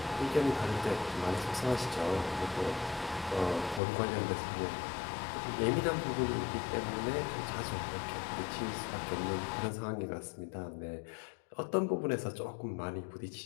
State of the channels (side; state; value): right; drops out; at 3.8 s